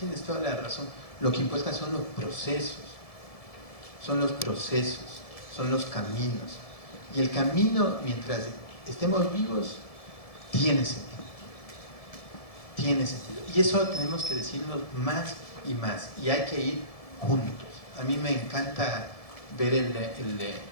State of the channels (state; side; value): late; right; 1.7 ms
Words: toda la razón. Lo que importa son los procesos, son los caminos. Y el camino, mientras estemos vivos, tiene sentido. Tiene sentido. Y eso tenemos que decirnos más y más. Y hay que ir juntos. A mí me encanta ver